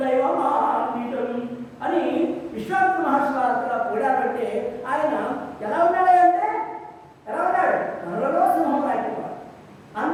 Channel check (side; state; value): both; identical; correlation 1.00